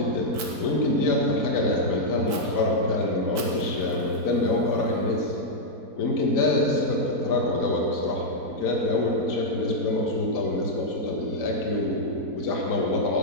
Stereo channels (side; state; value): left; late; 4.6 ms